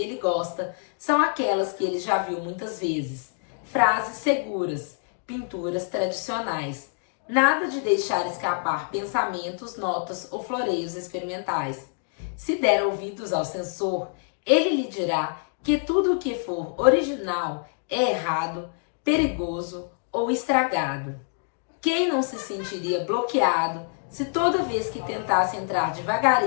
ele gosta são aquelas que ele já viu muitas vezes. Frases seguras, pinturas tradicionais. Nada de deixar escapar pensamentos, notas ou floreios experimentais. Se der ouvidos ao censor, ele lhe dirá que tudo o que for original é errado, perigoso ou estragado. Quem não se sentiria bloqueado se toda vez que tentasse entrar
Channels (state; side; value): silent; right; 61 dB below the other